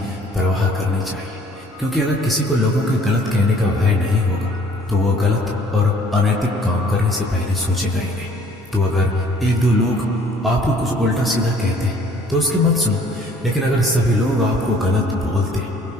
परवाह करनी चाहिए, क्योंकि अगर किसी को लोगों के गलत कहने का भय नहीं होगा तो वो गलत और अनैतिक काम करने से पहले सोचेगा ही नहीं। तो अगर 1-2 लोग आपको कुछ उल्टा सीधा कहते हैं तो उसकी मत सुनो, लेकिन अगर सभी लोग आपको गलत बोलते हैं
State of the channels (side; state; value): both; normal; correlation 0.56